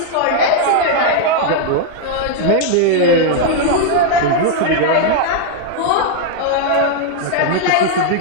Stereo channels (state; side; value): different; both; correlation 0.00